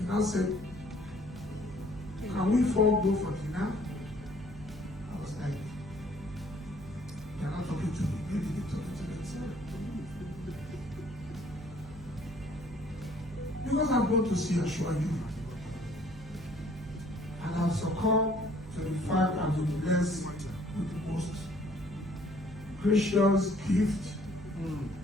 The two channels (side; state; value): right; noise; hum, 15 dB below the sound